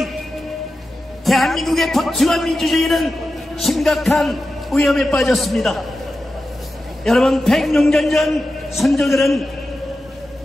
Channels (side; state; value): both; normal; correlation 0.92